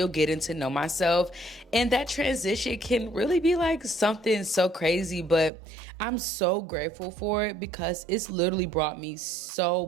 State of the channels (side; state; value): left; drops out; at 5.5 s